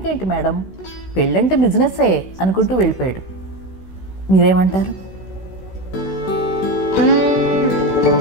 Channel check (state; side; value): late; right; 16 ms